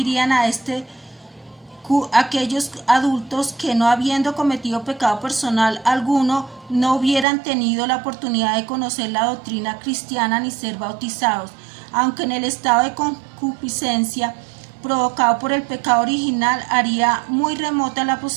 a aquellos adultos que no habiendo cometido pecado personal alguno no hubieran tenido la oportunidad de conocer la doctrina cristiana ni ser bautizados, aunque en el estado de concupiscencia provocado por el pecado original haría muy remota la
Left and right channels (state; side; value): drops out; left; at 7.2 s